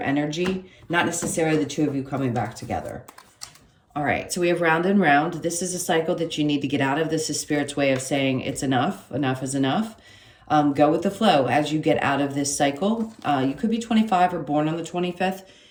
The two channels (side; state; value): both; identical; correlation 1.00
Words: not necessarily the two of you coming back together. All right, so we have round and round. This is a cycle that you need to get out of. This is Spirit's way of saying it's enough. Enough is enough. Go with the flow as you get out of this cycle. You could be 25 or born on the 25th.